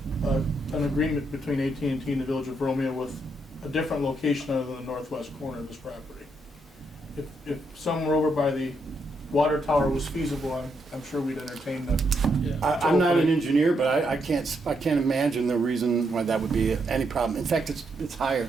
an agreement between AT&T and the Village of Romeo with a different location other than the northwest corner of this property. If somewhere over by the water tower was feasible, I'm sure we'd entertain them. I'm not an engineer, but I can't imagine the reason why that would be any problem. In fact, it's higher.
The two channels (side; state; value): both; normal; correlation 0.78